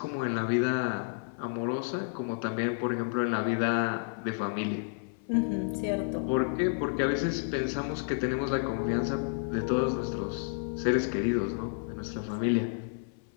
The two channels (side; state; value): right; silent; 57 dB below the other